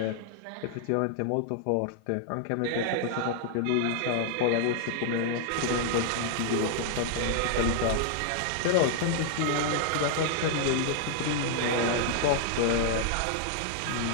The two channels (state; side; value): different; both; correlation -0.01